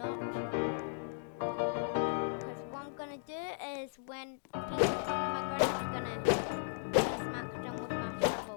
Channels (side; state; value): right; silent; digital silence